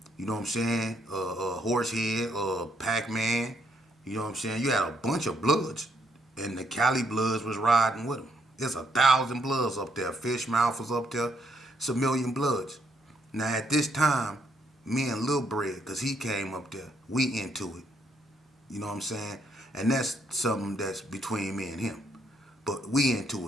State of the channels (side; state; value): both; normal; correlation 0.73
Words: you know what I'm saying, Horsehead, Pac-Man, you know what I'm saying. You had a bunch of Bloods, and the Cali Bloods was riding with them. There's 1,000 Bloods up there. Fishmouth was up there. It's 1,000,000 Bloods. Now at this time, me and Lil Bread, because he came up there, we into it. You know what I'm saying? And that's something that's between me and him. But we into